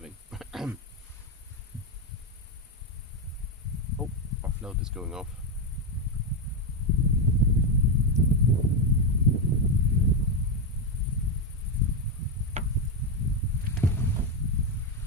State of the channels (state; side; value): normal; both; correlation 0.06